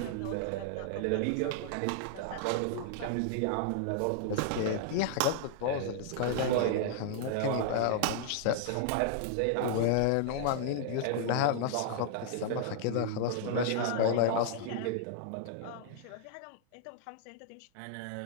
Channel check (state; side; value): different; both; correlation -0.01